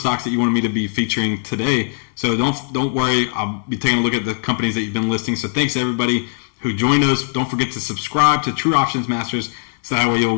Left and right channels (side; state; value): right; silent; digital silence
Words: that you wanted me to be featuring today. So don't worry, I'll be taking a look at the companies that you've been listing. So thanks to everybody who joined us. Don't forget to subscribe to True Options Masters, so that way you